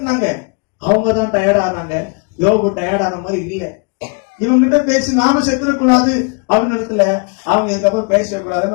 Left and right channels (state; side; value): quieter; right; 33.9 dB